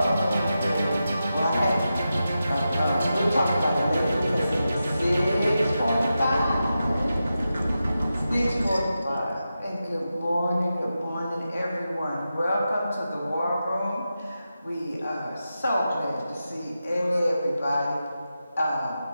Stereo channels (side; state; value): both; inverted; correlation -0.90